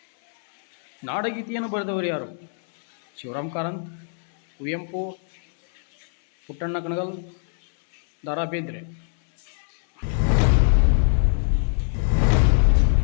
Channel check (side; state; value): right; silent; digital silence